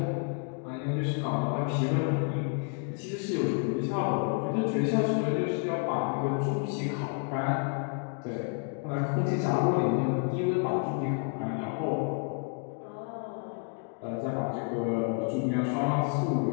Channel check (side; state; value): right; quieter; 39.6 dB